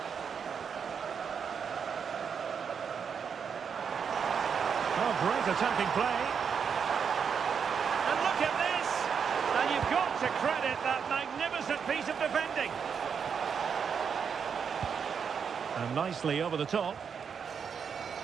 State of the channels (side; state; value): left; quieter; 6.7 dB